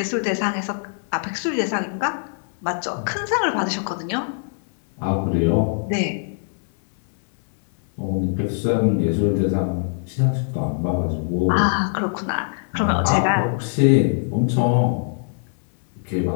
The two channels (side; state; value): right; silent; digital silence